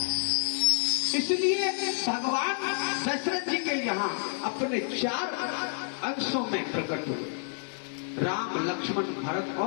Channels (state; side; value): silent; right; digital silence